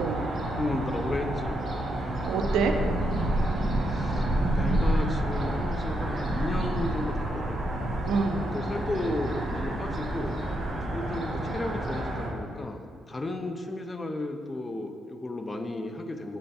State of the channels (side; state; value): both; normal; correlation 0.80